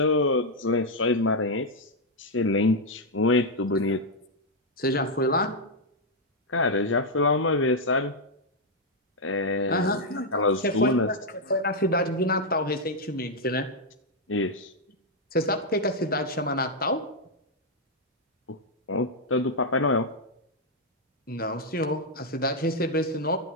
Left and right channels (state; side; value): normal; both; correlation -0.02